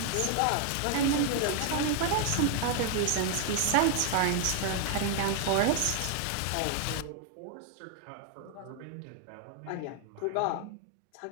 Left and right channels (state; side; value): different; both; correlation 0.00